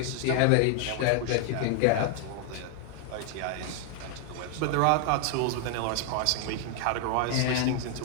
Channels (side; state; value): both; different; correlation 0.00